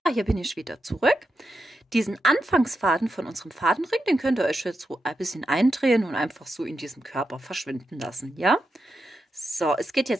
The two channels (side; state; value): both; normal; correlation 0.87